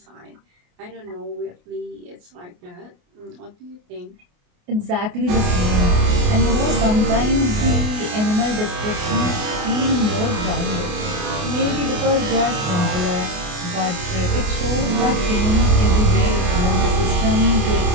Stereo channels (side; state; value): left; late; 28 ms